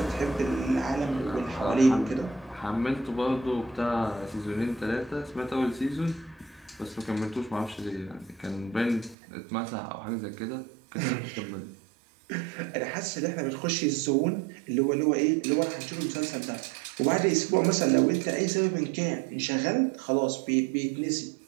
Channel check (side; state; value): left; drops out; at 9.2 s